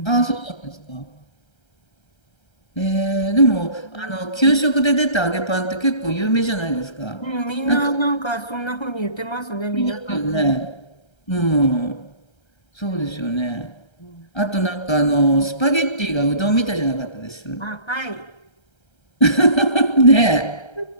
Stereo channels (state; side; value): late; right; 1.3 ms